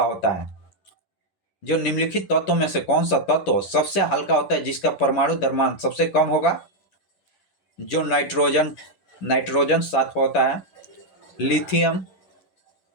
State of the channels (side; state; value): right; late; 11 ms